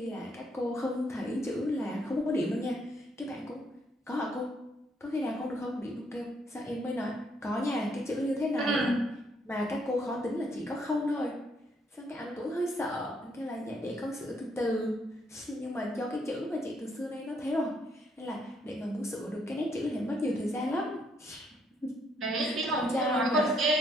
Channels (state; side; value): normal; both; correlation 0.71